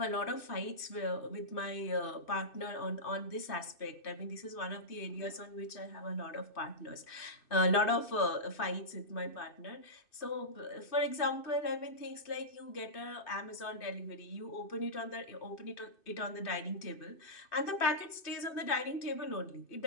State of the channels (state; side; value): late; right; 2.6 ms